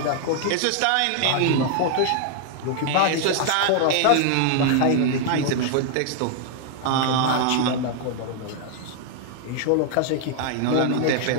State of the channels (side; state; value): both; different; correlation 0.00